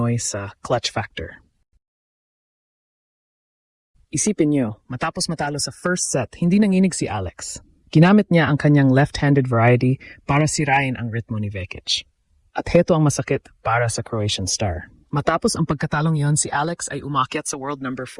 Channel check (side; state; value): both; identical; correlation 1.00